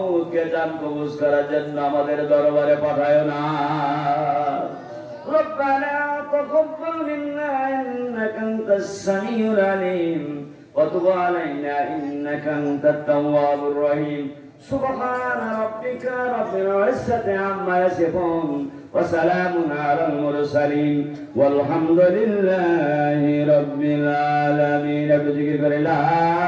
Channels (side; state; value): both; identical; correlation 1.00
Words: জান কবজ করার জন্য আমাদের দরবারে পাঠায় না। রব্বানা তাকাব্বাল মিন্না ইন্নাকা আনতাস সামিউল আলিম ওয়া তুব আলাইনা ইন্নাকা আনতাত তাওয়াবুর রহিম। সুবহান রাব্বিকা রাব্বিল ইজ্জাতি আম্মা ইয়াসিফুন ওয়া সালামুন আলাল মুরসালিন ওয়ালহামদুলিল্লাহি রাব্বিল আলামিন। জিকির করে লা